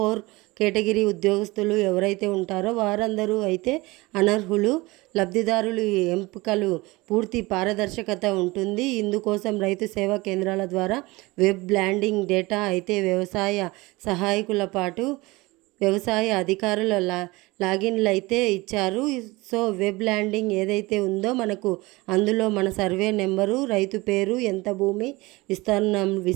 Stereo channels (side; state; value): left; quieter; 22.2 dB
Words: కేటగిరీ ఉద్యోగస్తులు ఎవరైతే ఉంటారో వారందరూ అయితే అనర్హులు. లబ్ధిదారులు ఎంపికలు పూర్తి పారదర్శకత ఉంటుంది. ఇందుకోసం రైతు సేవా కేంద్రాల ద్వారా వెబ్ ల్యాండింగ్ డేటా అయితే వ్యవసాయ సహాయకుల పాటు వ్యవసాయ అధికారుల లాగిన్లు అయితే ఇచ్చారు. వెబ్ ల్యాండింగ్ ఏదైతే ఉందో మనకు అందులో మన సర్వే నెంబరు, రైతు పేరు, ఎంత భూమి